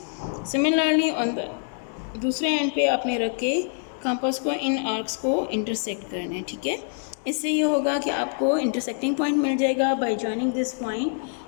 Similarly on the दूसरे एंड पे आपने रख के कंपास को इन आर्क्स को इंटरसेक्ट करना है, ठीक है। इससे ये होगा कि आपको इंटरसेक्टिंग पॉइंट मिल जाएगा। By joining this point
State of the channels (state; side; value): silent; right; digital silence